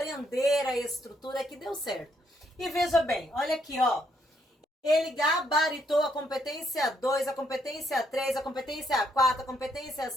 a estrutura que deu certo. E veja bem, olha aqui, ó. Ele gabaritou a competência 2, a competência 3, a competência 4, a competência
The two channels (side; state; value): both; normal; correlation 0.73